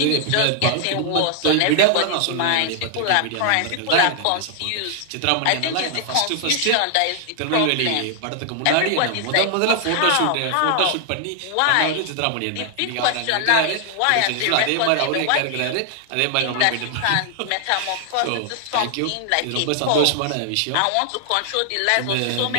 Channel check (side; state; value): both; different; correlation 0.00